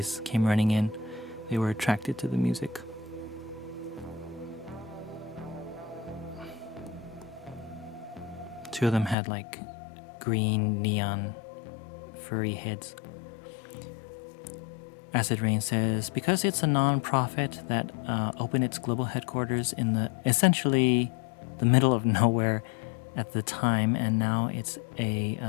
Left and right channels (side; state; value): right; drops out; at 9.2 s